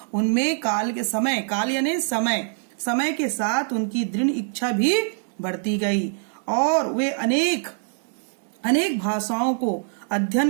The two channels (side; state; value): left; silent; digital silence